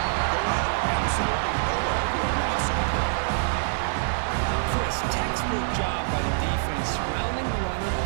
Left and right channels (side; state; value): left; silent; digital silence